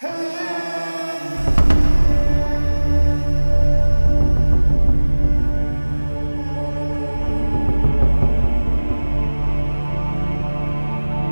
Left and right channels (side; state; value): both; inverted; correlation -1.00